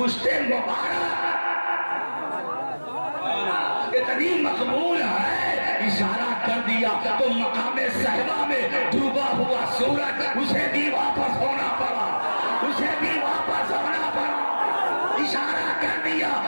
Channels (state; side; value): inverted; both; correlation -1.00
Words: مبارک اتنی مقبول ہے، اشارہ کر دیا تو مقام صحبہ میں ڈوبا ہوا سورج اسے بھی واپس ہونا پڑا، اسے بھی واپس ہونا پڑا۔ اشارہ کر دیا